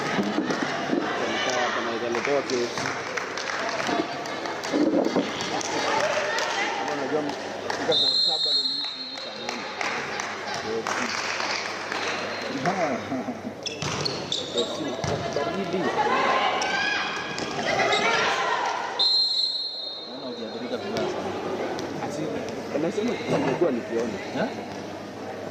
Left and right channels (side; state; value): both; identical; correlation 1.00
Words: Kama italetewa kesi. Kama unajua mfika saa 7 na nusu hivi saa 8. Baridi. Anasema nilikuwa nikiona.